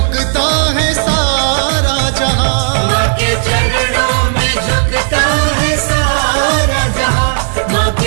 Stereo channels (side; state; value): left; silent; 66 dB below the other